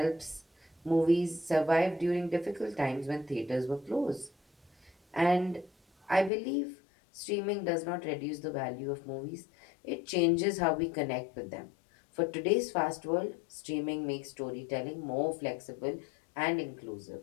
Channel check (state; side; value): drops out; right; at 6.3 s